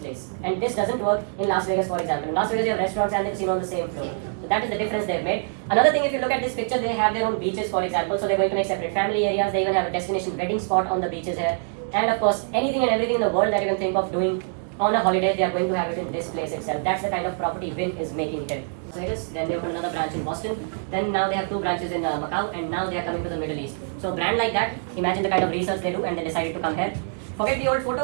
And this doesn't work in Las Vegas, for example. In Las Vegas, you have restaurants and the casino on the same floor. So that is the difference they've made. Another thing, if you look at this picture, they have their own beaches, for example. So they're going to make separate family areas. They even have a destination wedding spot on the beaches here. And of course, anything and everything in the world that you can think of doing on a holiday, they are going to have it in this place itself. That's the kind of property Wynn is making here. Then they opened another branch in Boston. Then now they have 2 branches in Macau, and now they are coming to the Middle East. So a brand like that, imagine the kind of research they do, and they decided to come here. Forget the old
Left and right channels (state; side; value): silent; left; 62 dB below the other